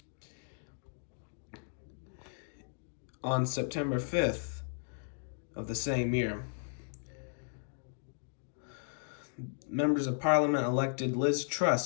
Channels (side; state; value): right; silent; digital silence